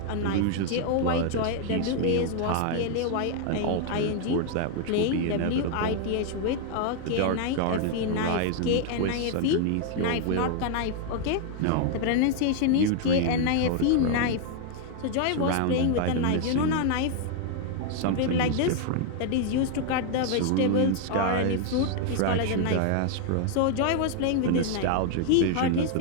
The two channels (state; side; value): different; both; correlation 0.00